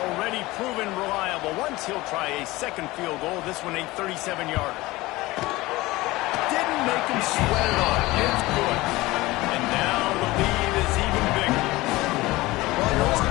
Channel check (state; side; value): quieter; right; 19.8 dB